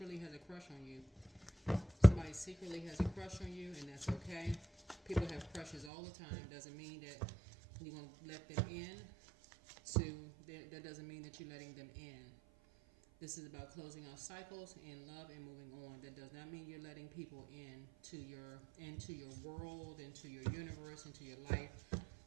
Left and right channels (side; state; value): left; drops out; at 5.9 s